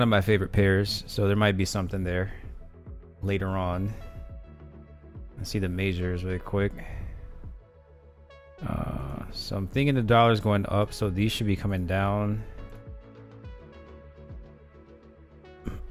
of my favorite pairs, so there might be something there later on. Let's see the majors really quick. So I'm thinking the dollar's going up, so these should be coming down.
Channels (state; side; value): identical; both; correlation 1.00